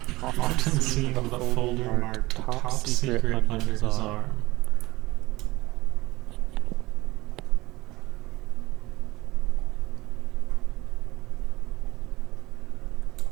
Often seen with a folder marked Top Secret under his arm.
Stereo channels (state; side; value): quieter; left; 20.0 dB